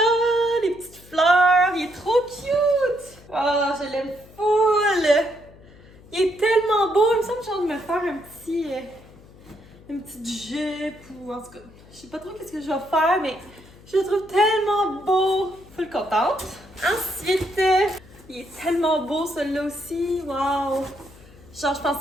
les petites fleurs, il est trop cute! Oh, je l'aime full! Il est tellement beau, il me semble que j'ai envie de me faire une petite jupe ou en tout cas, je sais pas trop qu'est-ce que je vais faire, mais je le trouve tellement beau! Full contente. Ensuite, il est tellement beau celui-là aussi. Wow! Genre, je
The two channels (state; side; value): noise; left; hum, 23 dB below the sound